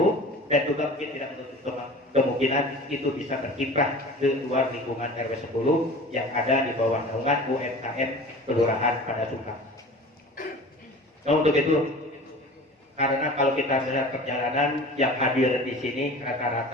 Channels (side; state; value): both; normal; correlation 0.40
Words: dan juga mungkin tidak menutup kemungkinan itu bisa berkiprah ke luar lingkungan RW 10 yang ada di bawah naungan UMKM Kelurahan Pada Sungkang. Nah untuk itu, karena kalau kita melihat perjalanan yang hadir di sini